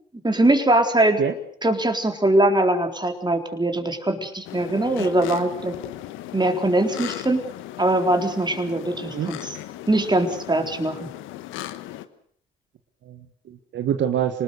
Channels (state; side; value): normal; both; correlation 0.62